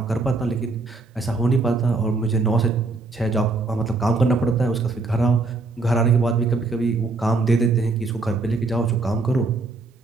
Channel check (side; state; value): left; quieter; 3.6 dB